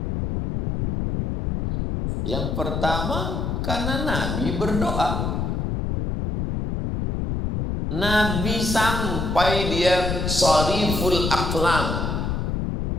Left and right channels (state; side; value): noise; left; rumble, 1 dB below the sound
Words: Yang pertama, karena Nabi berdoa. Nabi sampai dia shariful aqlam.